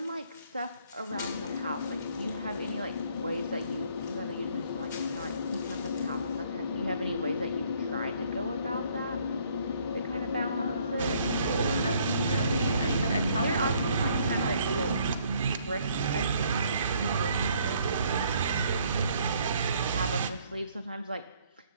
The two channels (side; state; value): both; inverted; correlation -0.63